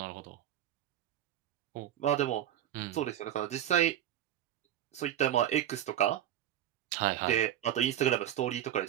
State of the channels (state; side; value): quieter; left; 11.5 dB